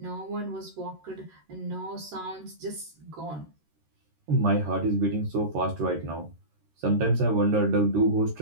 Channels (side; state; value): left; late; 13 ms